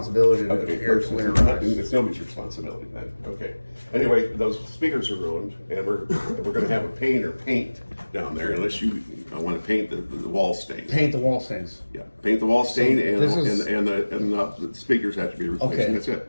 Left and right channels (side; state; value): both; inverted; correlation -1.00